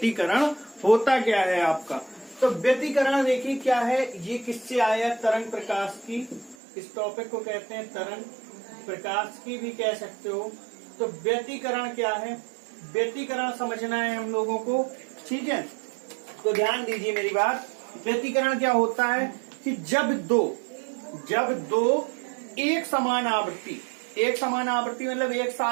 होता क्या है आपका, तो व्यतिकरण देखिए क्या है। ये किससे आया? तरंग प्रकाश की। इस टॉपिक को कहते हैं तरंग प्रकाश की भी कह सकते हो। तो व्यतिकरण क्या है, व्यतिकरण समझना है हम लोगों को, ठीक है। तो ध्यान दीजिए मेरी बात। व्यतिकरण क्या होता है कि जब दो एक समान आवृत्ति मतलब एक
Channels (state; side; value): drops out; left; at 6.6 s